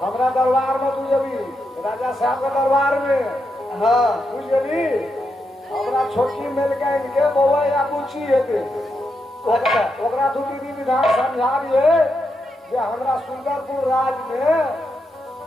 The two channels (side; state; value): both; normal; correlation 0.84